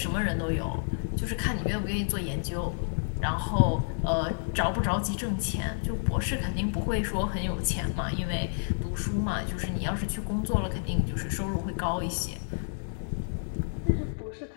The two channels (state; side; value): silent; right; 58 dB below the other